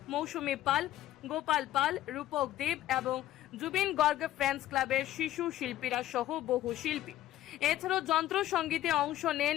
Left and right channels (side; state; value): right; quieter; 13.6 dB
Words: মৌসুমী পাল, গোপাল পাল, রূপক দেব এবং জুবিন গর্গ ফ্রেন্ডস ক্লাবের শিশু শিল্পীরা সহ বহু শিল্পী। এছাড়াও যন্ত্র সঙ্গীতে অংশ নেন